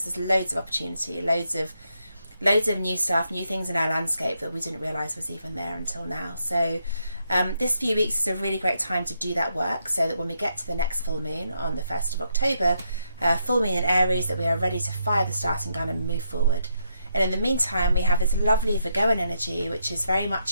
there's loads of opportunity, loads of new stuff, new things in our landscape that we didn't realise was even there until now. So this few weeks is a really great time to do that work, so that when we get to the next full moon on the 1st of October, full moon in Aries, that we are ready to fire the starting gun and move forward. And in the meantime, we have this lovely Virgoan energy, which is very much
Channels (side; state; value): both; inverted; correlation -0.79